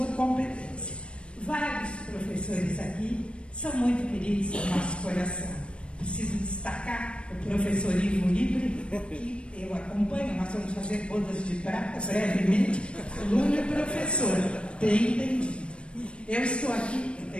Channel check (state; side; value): late; right; 0.058 ms